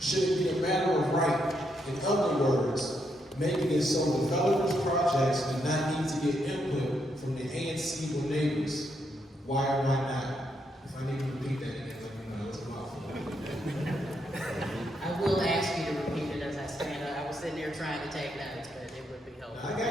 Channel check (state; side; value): normal; both; correlation 0.78